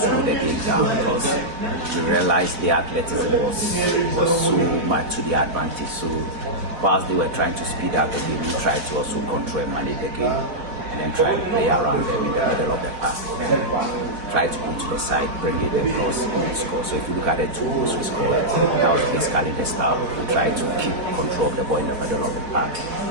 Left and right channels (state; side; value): late; left; 4.7 ms